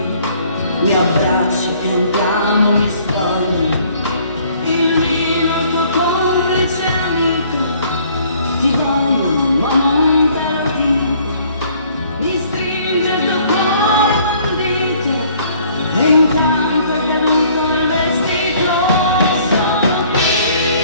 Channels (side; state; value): both; inverted; correlation -0.59